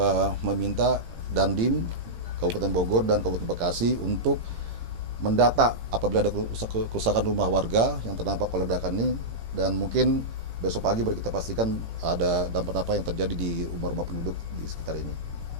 meminta Dandim Kabupaten Bogor dan Kabupaten Bekasi untuk mendata apabila ada kerusakan rumah warga yang terdampak oleh ledakan ini, dan mungkin besok pagi baru kita pastikan ada dampak apa yang terjadi di rumah-rumah penduduk di sekitar ini.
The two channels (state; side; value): late; left; 18 ms